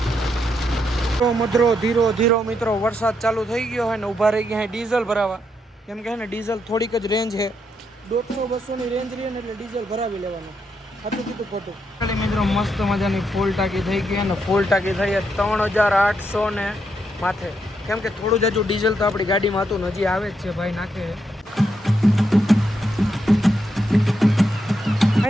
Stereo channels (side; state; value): both; normal; correlation 0.80